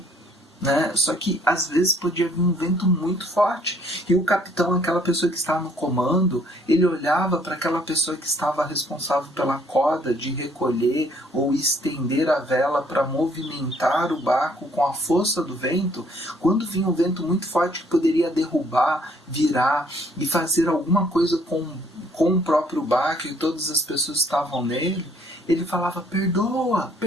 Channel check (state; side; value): normal; both; correlation 0.63